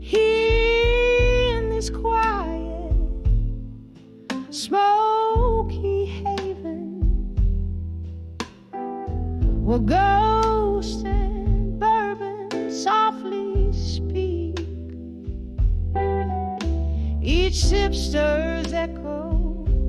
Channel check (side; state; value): both; identical; correlation 1.00